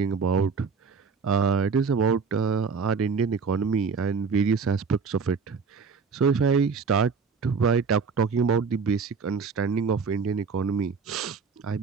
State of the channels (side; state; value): left; quieter; 5.3 dB